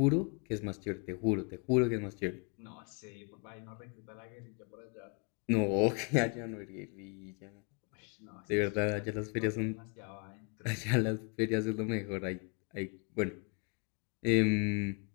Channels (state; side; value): quieter; right; 35.1 dB